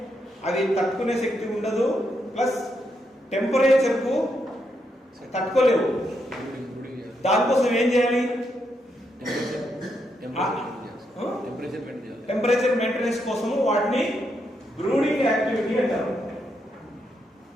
అవి తట్టుకునే శక్తి ఉండదు, ప్లస్ టెంపరేచర్ కు తట్టుకోలేవు. దానికోసం ఏం చేయాలి? టెంపరేచర్ మెయింటెనెన్స్ కోసం వాటిని బ్రూడింగ్ యాక్టివిటీ అంటారు.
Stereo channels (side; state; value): both; normal; correlation 0.80